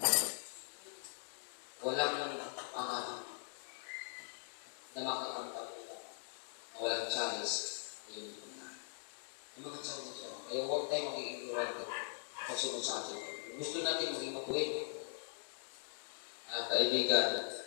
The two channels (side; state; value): right; silent; digital silence